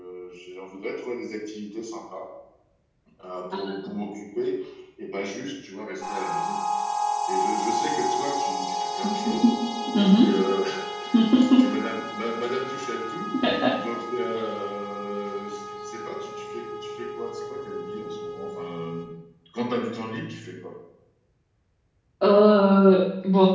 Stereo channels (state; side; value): identical; both; correlation 1.00